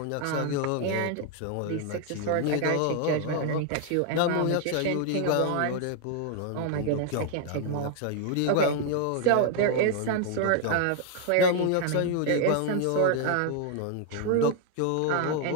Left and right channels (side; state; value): both; different; correlation 0.00